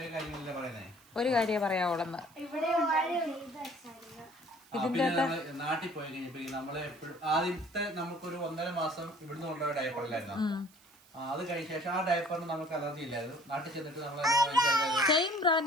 കാര്യങ്ങളല്ലേ പറയുന്നേ, ഒരു കാര്യം പറയാവോളന്ന്. നാട്ടിൽ പോയി കഴിഞ്ഞപ്പോ നമ്മള് എപ്പോഴും ആദ്യത്തെ നമുക്കൊരു 1.5 മാസം ഇവിടുന്ന് കൊണ്ടുപോയ ഡയപ്പറിലായിരുന്നു. അത് കഴിഞ്ഞ ശേഷം ആ ഡയപ്പറിന് നമുക്ക് അലർജി ഇല്ലായിരുന്നു. നാട്ടിൽ ചെന്നിട്ട് നമ്മൾ സെയിം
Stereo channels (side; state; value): right; noise; hiss, 27 dB below the sound